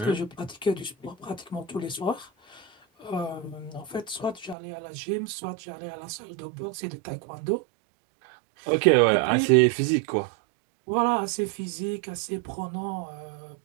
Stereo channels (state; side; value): drops out; left; at 4.5 s